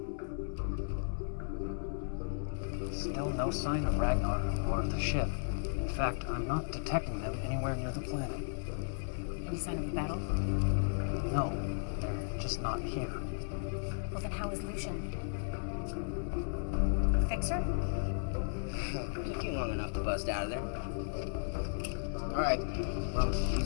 Still no sign of Ragnar or of the ship. In fact, I'm not detecting them anywhere near the planet. Any sign of a battle? No, they're just not here. Well, then how is Lucian? Fixer? Took you long enough to bust out of there. Alright, well,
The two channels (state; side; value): silent; right; digital silence